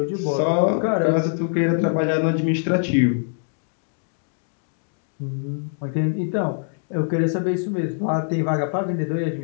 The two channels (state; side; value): silent; right; digital silence